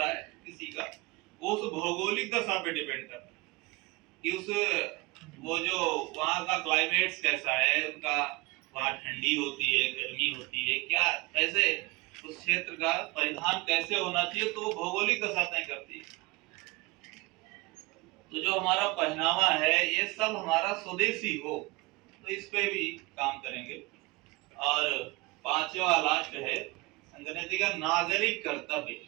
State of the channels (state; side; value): quieter; left; 24.0 dB